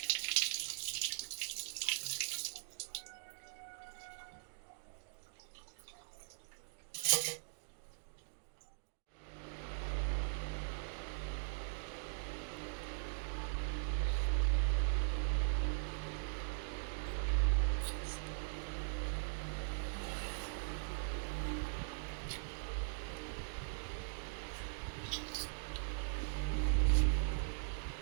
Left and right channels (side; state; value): left; silent; digital silence